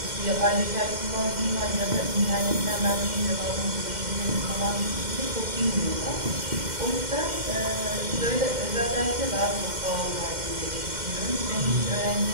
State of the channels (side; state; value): left; late; 2.1 ms